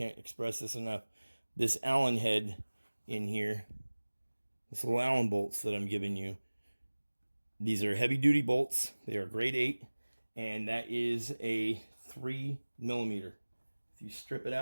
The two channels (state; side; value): inverted; both; correlation -1.00